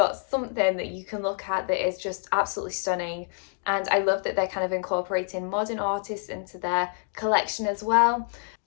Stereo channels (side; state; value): right; silent; 60 dB below the other